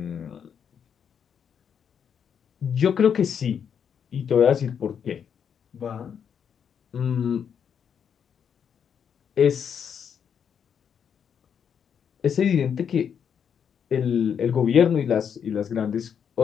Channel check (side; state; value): right; quieter; 7.7 dB